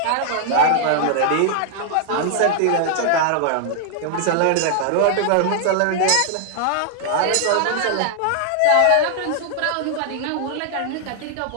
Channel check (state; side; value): different; both; correlation 0.00